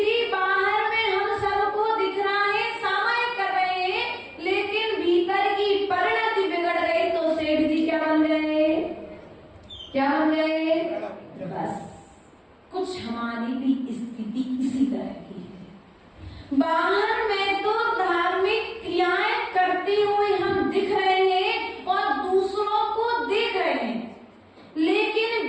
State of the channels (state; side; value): identical; both; correlation 1.00